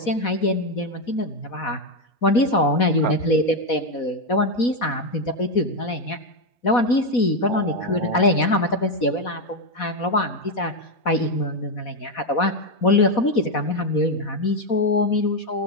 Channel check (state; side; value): late; right; 4.1 ms